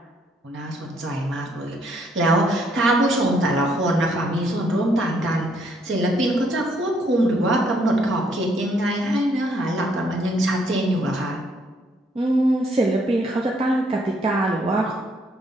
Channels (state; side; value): normal; both; correlation 0.69